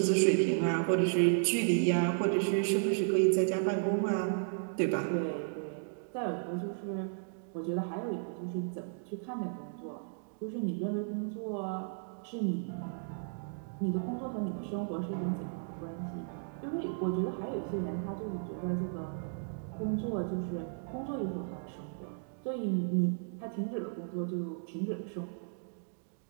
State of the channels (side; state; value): left; silent; digital silence